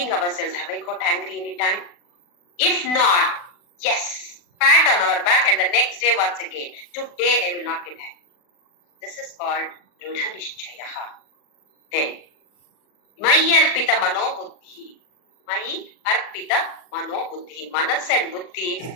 ourselves. Have I got angry any time? If not, yes, pat on our back and the next day once again, today I will not get angry. This is called Dridha Nishchayaha. Then, Mayi Arpita Mano Buddhi. Mayi Arpita Mano Buddhi. Manas and Buddhi,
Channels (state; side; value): late; right; 40 ms